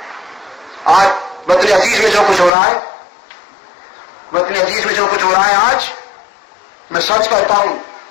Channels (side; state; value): right; drops out; at 2.5 s